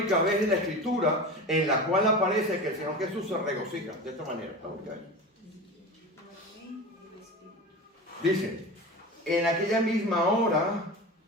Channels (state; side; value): normal; both; correlation 0.29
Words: vez en la Escritura en la cual aparece que el Señor Jesús se regocija. De esta manera. Dice, en aquella misma hora